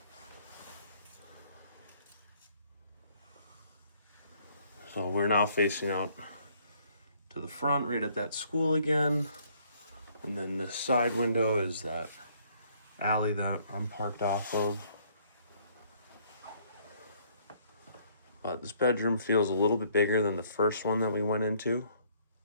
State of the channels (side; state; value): both; inverted; correlation -0.64